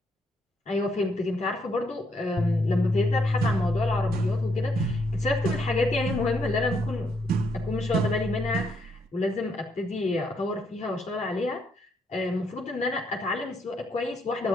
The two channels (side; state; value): both; normal; correlation 0.74